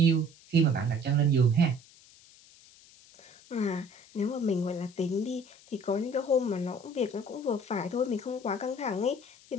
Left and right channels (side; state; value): left; noise; hiss, 24 dB below the sound